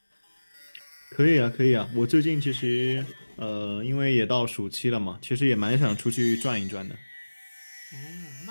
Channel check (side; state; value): both; inverted; correlation -1.00